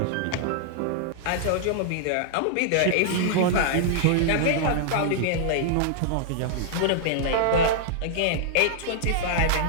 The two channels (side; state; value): both; different; correlation -0.01